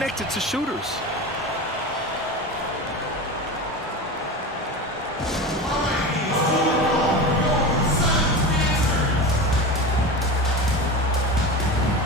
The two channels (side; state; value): both; normal; correlation 0.26